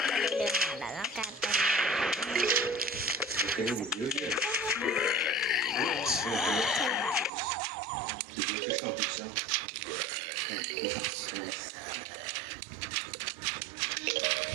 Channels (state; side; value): drops out; left; at 7.3 s